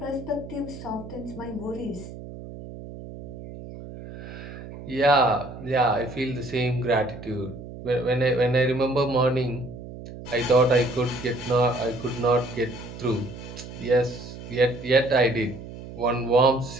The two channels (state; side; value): noise; right; hum, 13 dB below the sound